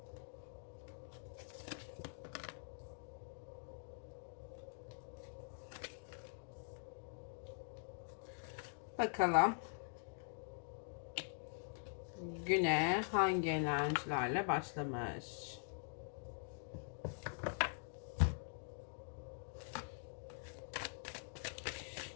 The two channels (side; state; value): right; silent; digital silence